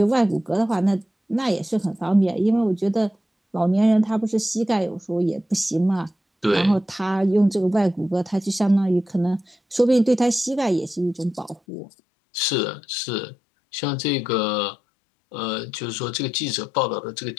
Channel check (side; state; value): right; drops out; at 11.6 s